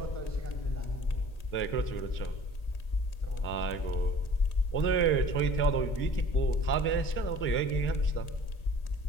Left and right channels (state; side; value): late; right; 1.8 ms